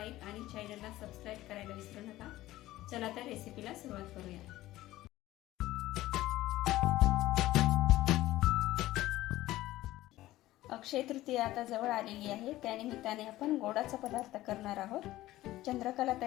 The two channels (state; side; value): quieter; right; 16.1 dB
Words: आणि चॅनलला सबस्क्राइब करायला विसरू नका। चला तर रेसिपीला सुरुवात करूया। अक्षय तृतीया आता जवळ आलेली आहे, त्यानिमित्ताने आपण गोडाचा पदार्थ करणार आहोत, चंद्रकला